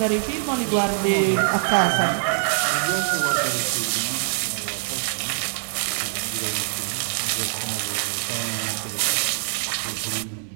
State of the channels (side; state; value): left; silent; digital silence